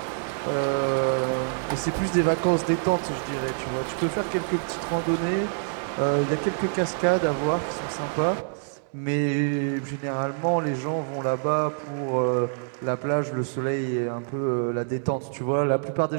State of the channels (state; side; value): silent; left; digital silence